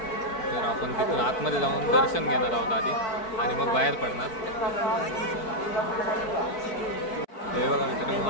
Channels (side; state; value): right; late; 4.6 ms